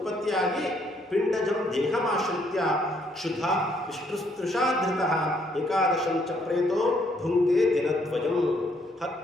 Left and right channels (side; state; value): both; normal; correlation 0.69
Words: ಪಿಂಡಜಂ ದೇಹಮಾಶ್ರಿತ್ಯ ಕ್ಷುಧ ವಿಷ್ಣುಸ್ತೃಷಾಧೃತಃ ಏಕಾದಶಂ ಚ ಪ್ರೇತೋ ಭುಂಕ್ತೆ ದಿನದ್ವಯಂ.